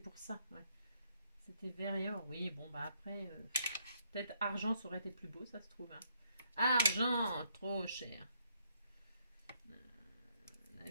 ça. Ouais. C'était vert et or. Oui, bon, bah après, peut-être argent, ça aurait été plus beau, ça se trouve. Hein. Argent, trop cher. La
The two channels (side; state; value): both; inverted; correlation -0.71